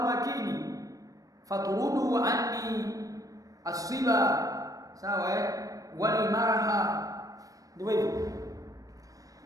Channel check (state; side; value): late; left; 0.17 ms